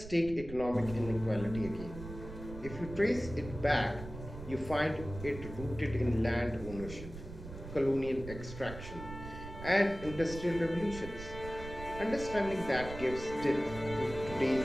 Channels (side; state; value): right; noise; rumble, 11 dB below the sound